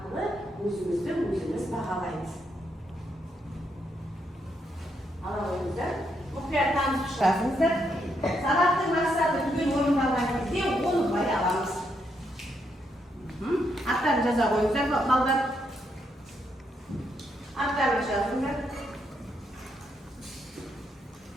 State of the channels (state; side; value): normal; both; correlation 0.78